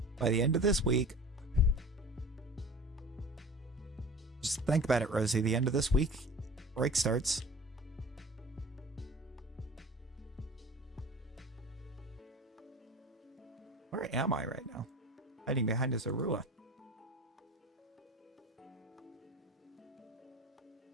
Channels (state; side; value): normal; both; correlation 0.39